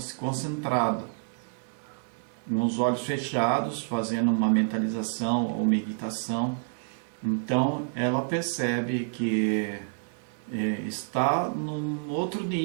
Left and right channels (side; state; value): left; silent; digital silence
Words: concentrado, com os olhos fechados, fazendo uma mentalização ou meditação. Então ela percebe que está num outro